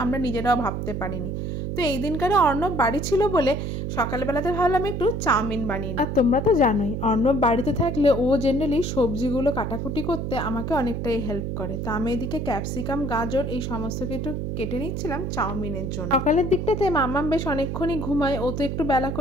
আমরা নিজেরাও ভাবতে পারিনি। তো এই দিনকারে অর্ণব বাড়ি ছিল বলে সকালবেলাতে ভাবলাম একটু চাউমিন বানিয়ে। আর তোমরা তো জানোই অর্ণব বাড়িতে থাকলে ও জেনারেলি সবজিগুলো কাটাকুটি করতে আমাকে অনেকটাই হেল্প করে। তো আমি এদিকে ক্যাপসিকাম, গাজর এই সমস্ত কিছু কেটে নিচ্ছিলাম চাউমিনের জন্য। সকালের দিকটাতে মাম্মাম বেশ অনেকক্ষণই ঘুমায়, ও তো একটু বেলা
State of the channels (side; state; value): right; noise; hum, 3 dB below the sound